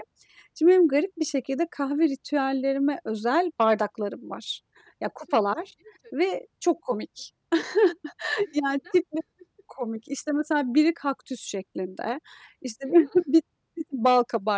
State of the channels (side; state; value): both; identical; correlation 1.00